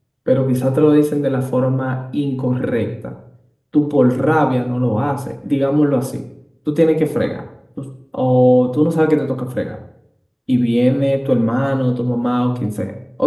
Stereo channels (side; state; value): both; identical; correlation 1.00